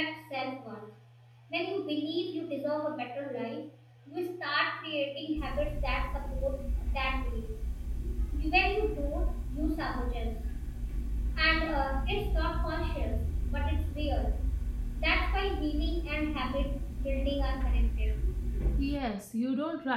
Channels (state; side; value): identical; both; correlation 1.00